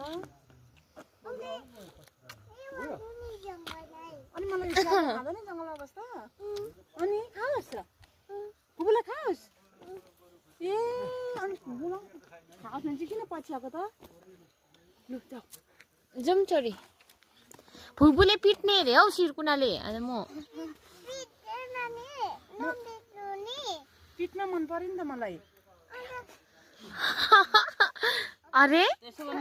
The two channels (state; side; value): identical; both; correlation 1.00